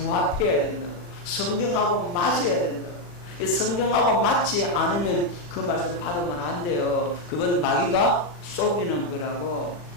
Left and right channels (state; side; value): late; right; 40 ms